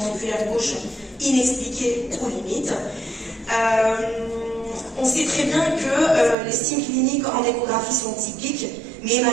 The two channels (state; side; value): drops out; left; at 6.4 s